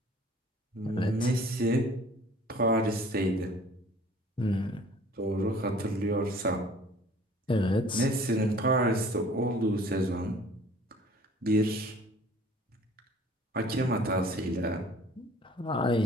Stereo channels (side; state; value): both; normal; correlation 0.51